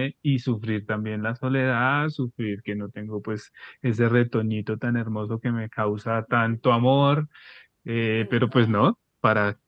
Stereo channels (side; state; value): both; identical; correlation 1.00